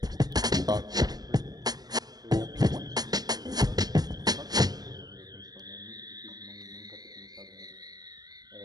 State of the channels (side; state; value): left; late; 0.19 ms